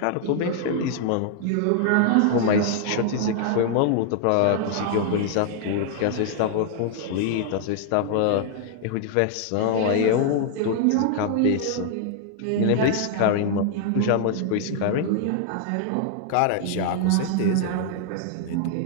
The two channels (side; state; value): both; different; correlation 0.00